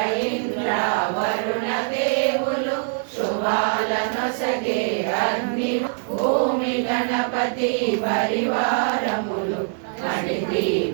ఇంద్ర వరుణ దేవులు శుభాలనొసగే అగ్ని భూమి గణపతి పరివారములు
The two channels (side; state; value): left; silent; digital silence